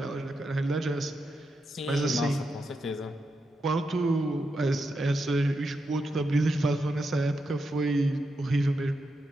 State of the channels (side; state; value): both; normal; correlation 0.85